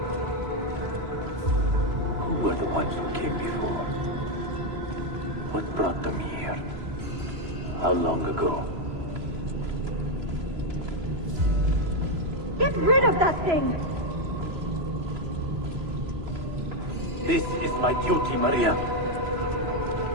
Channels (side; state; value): left; late; 3.0 ms